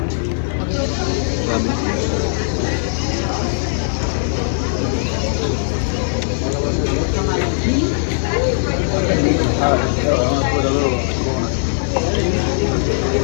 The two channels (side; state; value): right; silent; 65 dB below the other